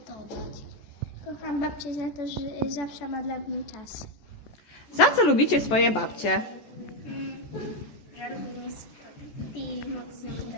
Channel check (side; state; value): right; late; 14 ms